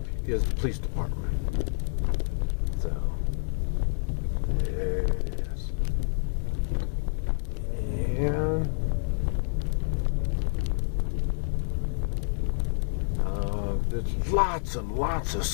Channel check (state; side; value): silent; right; digital silence